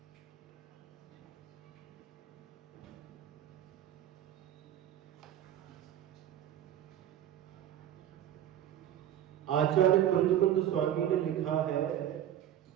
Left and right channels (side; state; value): left; quieter; 11.2 dB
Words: आचार्य कुंद स्वामी ने लिखा है,